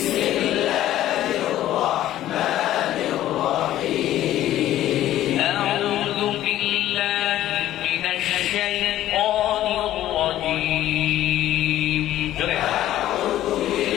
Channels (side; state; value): right; quieter; 13.3 dB